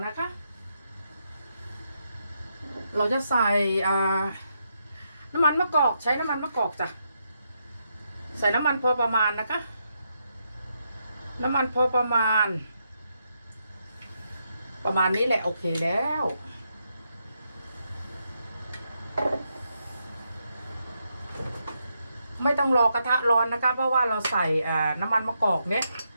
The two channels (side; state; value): both; inverted; correlation -0.81